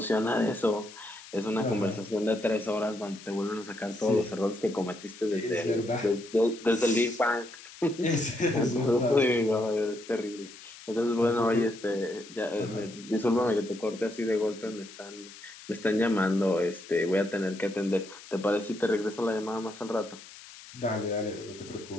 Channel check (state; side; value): noise; left; hiss, 17 dB below the sound